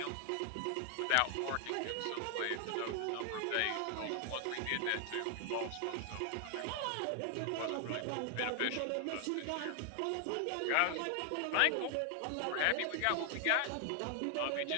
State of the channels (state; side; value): different; both; correlation 0.00